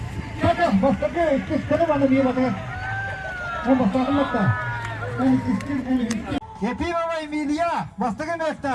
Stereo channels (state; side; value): identical; both; correlation 1.00